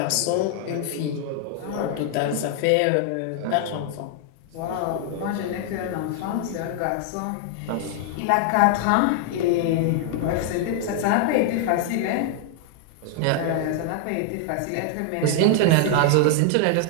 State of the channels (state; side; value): different; both; correlation 0.00